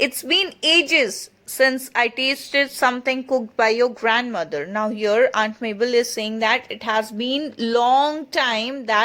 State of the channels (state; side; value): identical; both; correlation 1.00